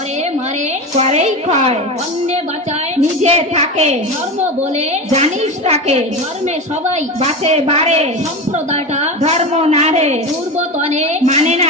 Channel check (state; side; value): normal; both; correlation 0.23